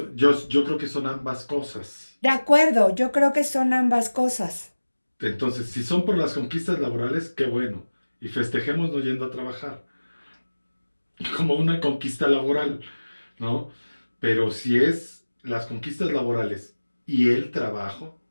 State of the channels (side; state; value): both; inverted; correlation -1.00